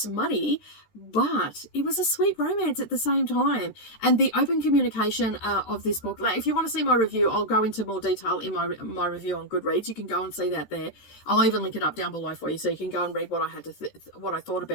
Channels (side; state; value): right; late; 13 ms